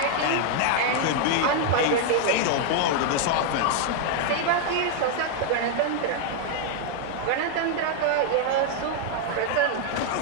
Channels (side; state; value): both; different; correlation 0.00